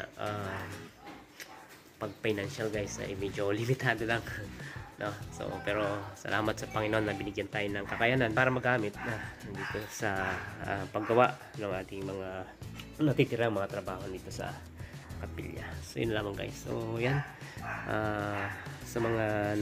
pag financial guys ay medyo limitado lang. No? So pero salamat sa Panginoon na binigyan tayo ng kakayanan para magamit dito sa paggawa ng ating mga natitira mga trabaho dito sa kapilya. So yun lamang guys. So yan, sa mga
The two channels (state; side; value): identical; both; correlation 1.00